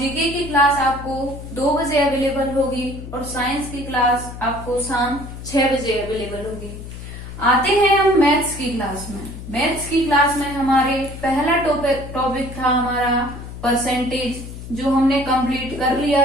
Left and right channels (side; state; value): left; noise; hum, 11 dB below the sound